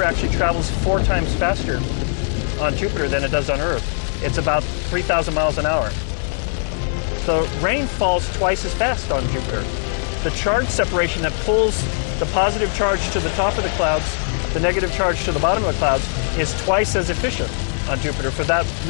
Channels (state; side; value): silent; right; digital silence